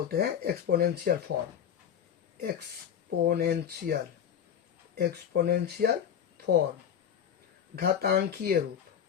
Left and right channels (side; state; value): right; quieter; 8.7 dB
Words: हैं exponential form, exponential, exponential form, घातांकीय रूप,